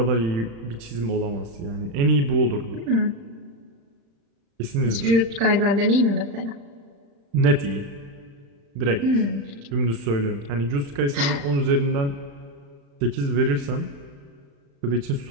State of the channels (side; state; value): left; late; 35 ms